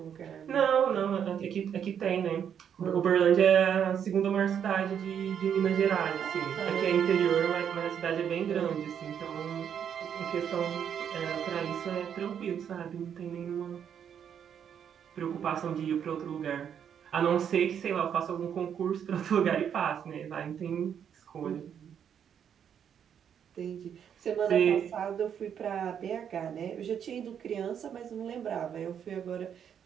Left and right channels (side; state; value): left; quieter; 8.4 dB